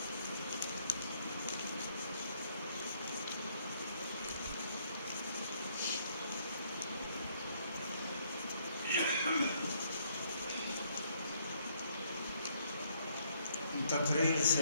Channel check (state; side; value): inverted; both; correlation -0.68